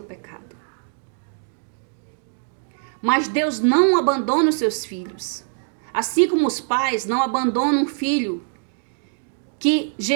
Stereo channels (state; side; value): silent; left; digital silence